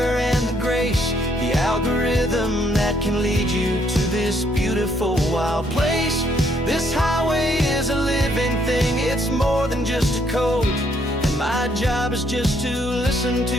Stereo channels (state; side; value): normal; both; correlation 0.70